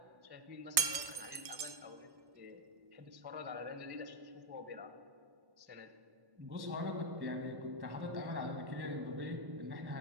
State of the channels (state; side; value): late; left; 1.1 ms